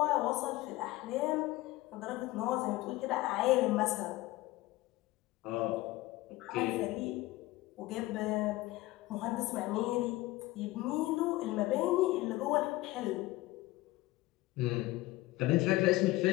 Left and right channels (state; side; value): quieter; right; 18.6 dB